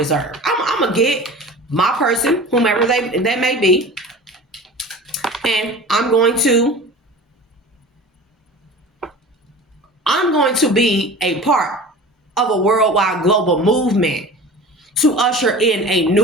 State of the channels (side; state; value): both; normal; correlation 0.38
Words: I'm going to get my person, whomever they may be. And I'm going to be a part of a worldwide global movement to usher in a